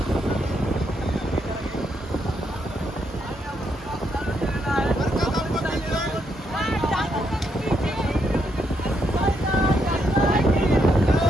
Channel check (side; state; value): both; normal; correlation 0.77